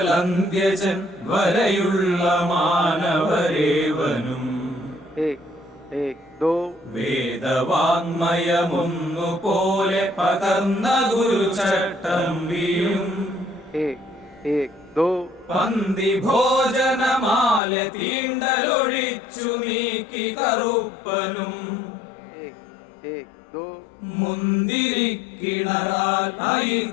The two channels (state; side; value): drops out; right; at 17.6 s